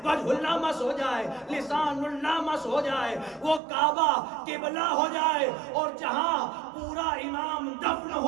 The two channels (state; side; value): drops out; left; at 3.6 s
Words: وجہ اللہ مس ہو جائے، لسان اللہ مس ہو جائے، وہ کعبہ قبلہ ہو جائے. اور جہاں پورا امام دفن